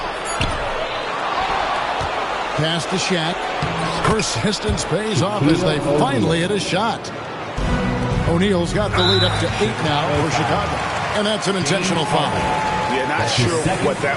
Pass to Shaq. Persistence pays off as they finally hit a shot. O'Neal's got the lead up to 8 now for Chicago. And that's an intentional foul. Yeah, Not sure what that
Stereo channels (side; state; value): both; identical; correlation 1.00